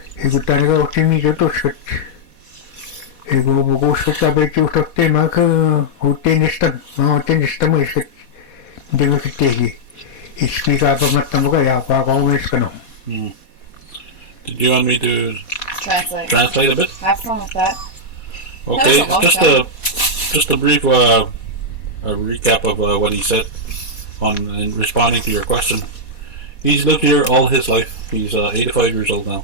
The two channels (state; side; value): late; right; 4.2 ms